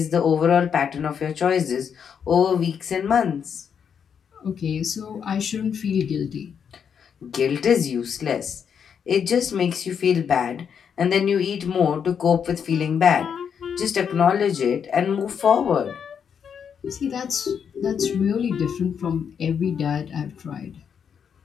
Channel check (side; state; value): right; quieter; 7.4 dB